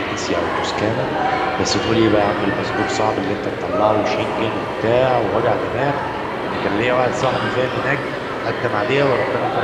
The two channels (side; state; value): both; identical; correlation 1.00